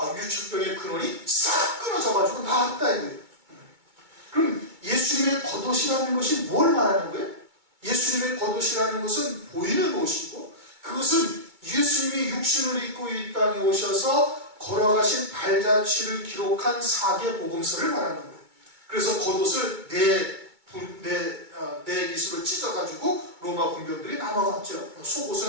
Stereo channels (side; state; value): left; late; 2.2 ms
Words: 유출병의 근원이 싹 끊어져가지고 나았다 이거예요. 그럼 예수님의 겉옷이라는 것이 뭘 말하는 거예요? 예수님의 겉옷이라는 것은 보이는 옷이고, 그것은 예수님이 육신을 입고 이 땅에 오셔서 걸어가신 발자취를 기록한 사계복음서를 말하는 거예요. 그래서 겉옷을 네 깃으로 찢어가지고 로마 군병들이 나눠갔죠.